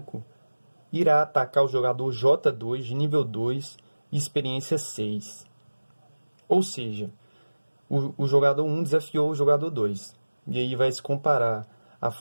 irá atacar o jogador J2 de nível 2 e experiência 6. Ou seja, o jogador 1 desafiou o jogador 2. E aí vai se comparar a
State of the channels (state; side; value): inverted; both; correlation -1.00